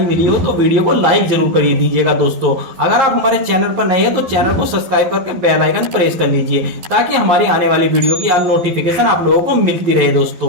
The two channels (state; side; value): late; left; 11 ms